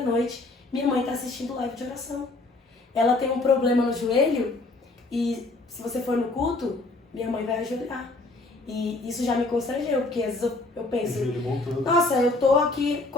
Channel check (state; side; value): quieter; right; 3.1 dB